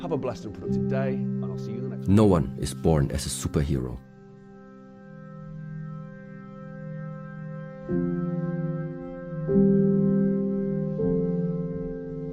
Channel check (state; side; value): identical; both; correlation 1.00